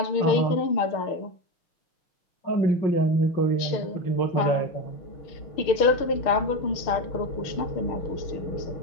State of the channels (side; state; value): right; late; 6.5 ms